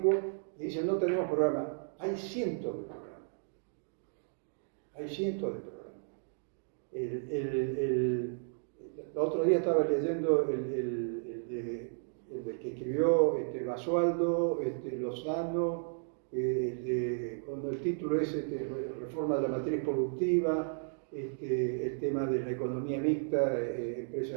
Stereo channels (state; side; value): silent; left; digital silence